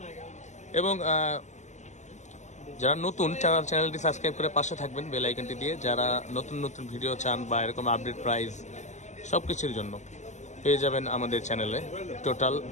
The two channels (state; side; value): late; right; 0.34 ms